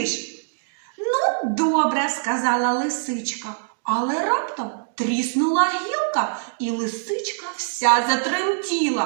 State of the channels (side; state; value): left; silent; digital silence